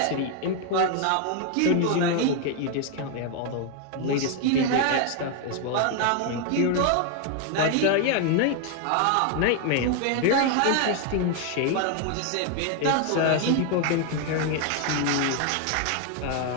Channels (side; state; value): both; different; correlation 0.00